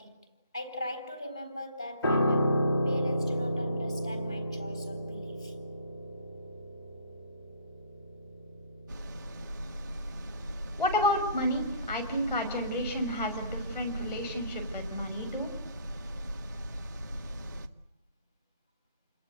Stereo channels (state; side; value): inverted; both; correlation -0.55